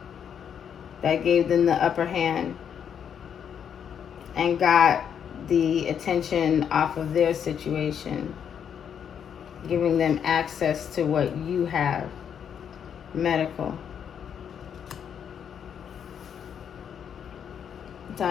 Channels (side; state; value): right; quieter; 8.1 dB